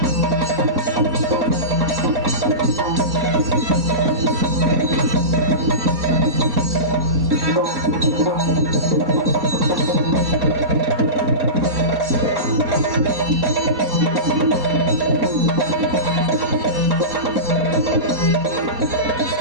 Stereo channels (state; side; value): late; left; 4.2 ms